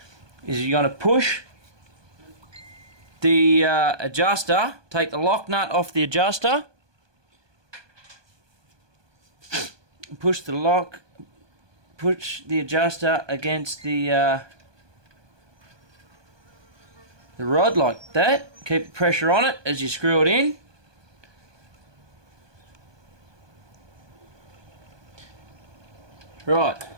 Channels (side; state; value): left; late; 1.2 ms